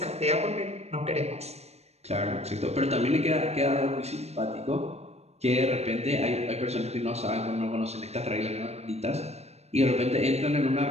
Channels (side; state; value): left; late; 0.31 ms